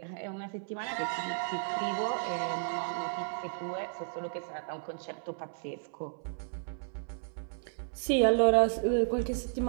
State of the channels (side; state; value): left; silent; 56 dB below the other